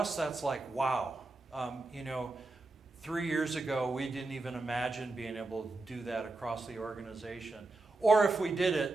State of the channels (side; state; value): left; quieter; 3.2 dB